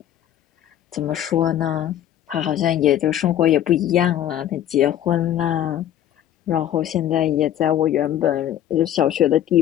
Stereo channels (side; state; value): right; quieter; 11.4 dB